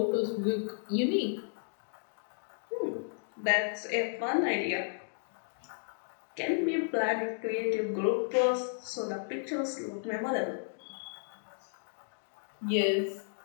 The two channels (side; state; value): right; silent; digital silence